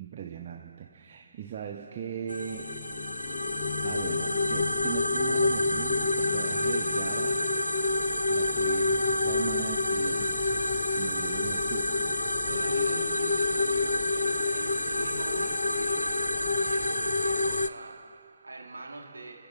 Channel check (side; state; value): both; inverted; correlation -0.82